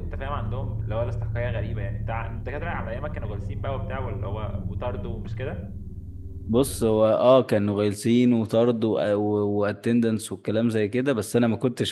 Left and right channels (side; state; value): both; identical; correlation 1.00